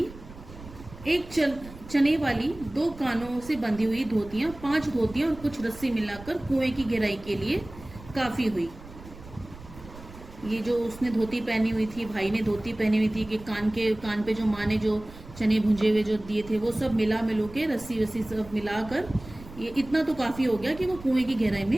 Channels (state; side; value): noise; right; rumble, 17 dB below the sound